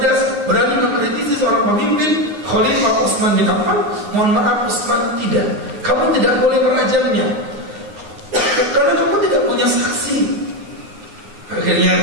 berani mengkritisi seorang pemimpin, Khalifah Utsman bin Affan. Mohon maaf Utsman, tidak, kamu tidak boleh merajamnya karena kamu tidak punya saksi.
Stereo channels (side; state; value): left; late; 9.6 ms